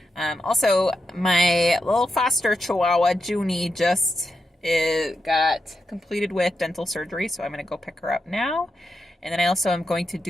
Also, my little foster chihuahua, Junie, just got completed with dental surgery, so I'm going to go pick her up now. And then I also am going to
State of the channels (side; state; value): both; normal; correlation 0.86